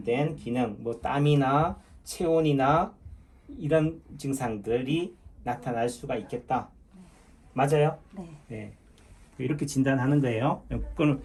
기능 뭐 땀이나 체온이나 이런 증상들이 나타날 수가 있겠다. 맞아요? 네. 이렇게 진단하는 거예요. 그럼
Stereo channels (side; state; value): both; identical; correlation 1.00